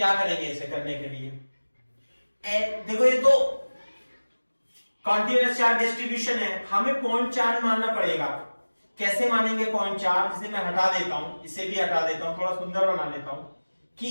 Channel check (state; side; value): inverted; both; correlation -1.00